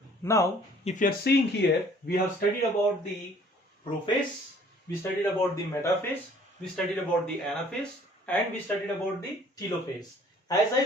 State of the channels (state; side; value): normal; both; correlation 0.56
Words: Now, if you are seeing here, we have studied about the prophase, we studied about the metaphase, we studied about the anaphase, and we studied about the telophase. As I